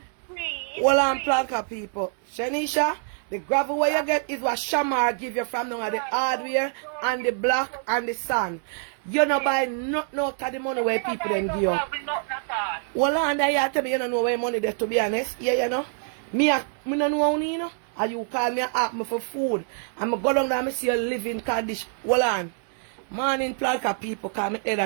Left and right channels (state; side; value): silent; left; 61 dB below the other